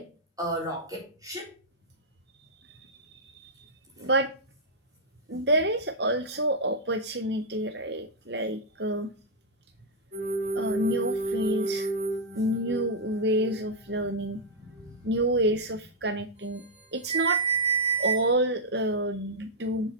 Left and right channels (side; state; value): both; normal; correlation -0.07